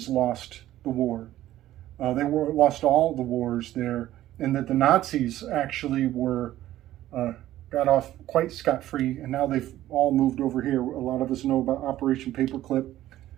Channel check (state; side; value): quieter; left; 14.0 dB